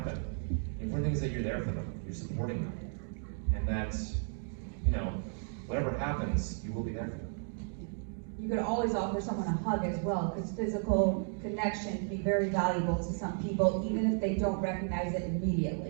The important thing is that you're there for them, you're supporting them, and that whatever happens, you will be there for them. You could always offer someone a hug as well, because physical connection can be very valuable to some people, even if they don't recognize it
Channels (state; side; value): silent; left; 55 dB below the other